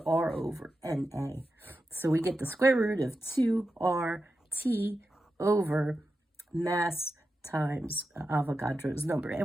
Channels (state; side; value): normal; both; correlation 0.90